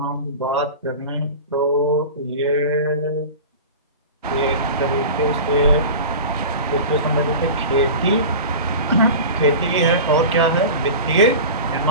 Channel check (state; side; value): inverted; both; correlation -0.32